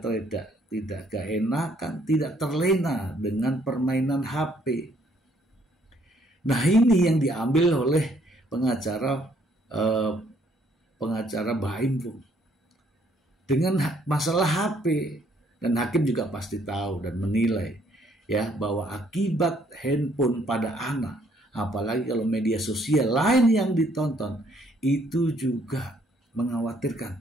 tidak keenakan, tidak terlena dengan permainan HP. Nah ini yang diambil oleh pengacara Baim Wong dengan masalah HP, dan hakim juga pasti tahu dan menilai ya bahwa akibat handphone pada anak, apalagi kalau media sosial lain yang ditonton, itu juga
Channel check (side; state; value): both; normal; correlation 0.66